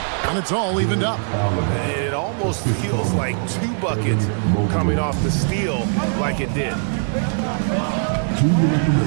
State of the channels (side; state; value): left; silent; digital silence